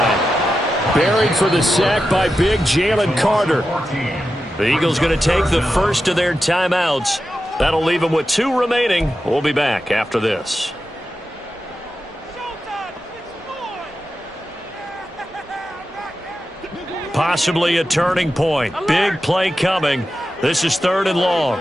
Buried for the sack by big Jalen Carter. The Eagles going to take the first of their timeouts. That'll leave them with 2 remaining. We'll be back after this. Possibly a turning point. Big play coming. This is 3rd and long.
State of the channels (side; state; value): both; normal; correlation 0.91